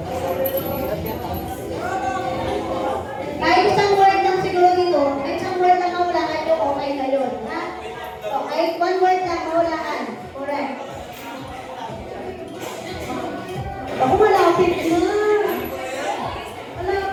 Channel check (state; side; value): identical; both; correlation 1.00